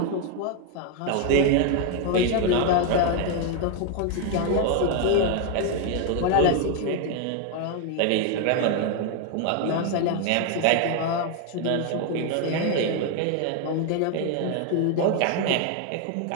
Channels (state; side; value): different; both; correlation 0.01